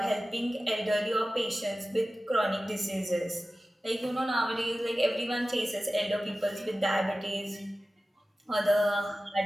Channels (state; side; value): normal; both; correlation 0.95